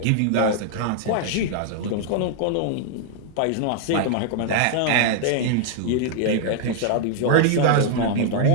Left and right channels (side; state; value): both; different; correlation 0.00